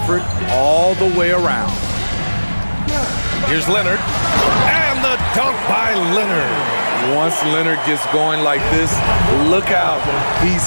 all the way around. Here's Leonard. And the dunk by Leonard. Once Leonard gets going like this, look out. He's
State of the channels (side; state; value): both; inverted; correlation -1.00